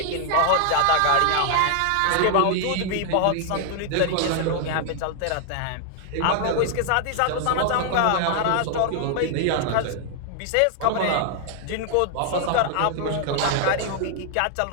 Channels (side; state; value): both; different; correlation 0.00